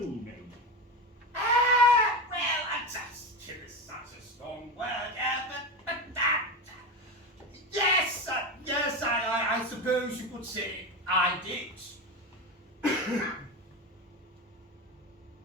me? Well, kill is such a strong word, but yes, I suppose you could say I did.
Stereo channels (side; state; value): both; normal; correlation 0.19